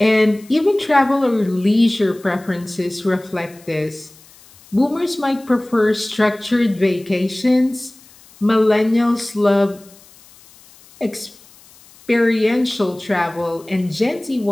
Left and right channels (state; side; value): noise; left; hiss, 25 dB below the sound